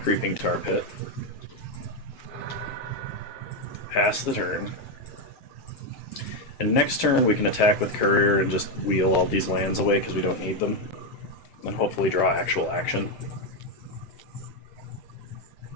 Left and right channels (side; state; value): right; late; 7.9 ms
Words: Creeping Tar Pit. Pass the turn. And next turn we can attack with Courier and just wheel all these lands away because we don't need them. And hopefully draw actual action.